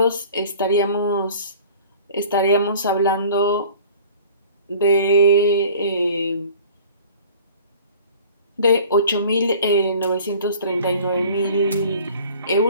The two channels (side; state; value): both; inverted; correlation -0.47